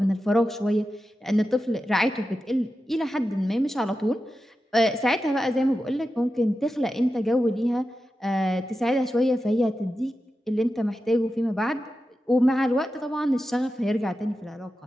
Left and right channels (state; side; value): normal; both; correlation 0.91